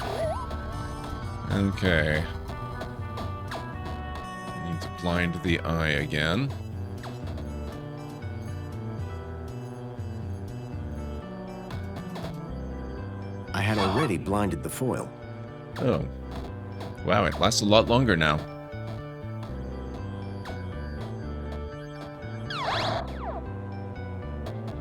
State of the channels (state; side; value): identical; both; correlation 1.00